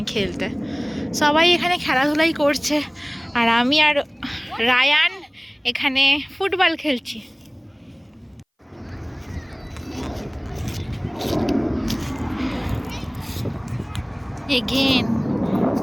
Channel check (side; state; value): both; identical; correlation 1.00